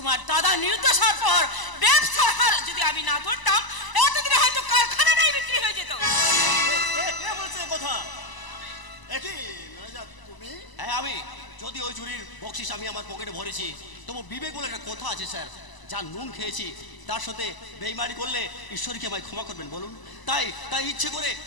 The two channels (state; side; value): late; right; 1.0 ms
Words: দাদা নির্দোষ হওয়ার পর ব্যবসার হাল যদি আমি না ধরতাম, এতদিনে হয়তো কারখানাটাই বিক্রি হয়ে যেত। কে বলছে কথা? একই ম্যানেজার তুমি? হ্যাঁ আমি। যদি ওই চুরির বকশিস আমি আমার পকেটে ভরেছি, তবু বিবেক বলে একটা কথা আছে স্যার। যা নুন খেয়েছি তার সাথে বেইমানি করলে ঈশ্বরকে আমায় ক্ষমা করবেন বলুন। তাই তাই ইচ্ছে করে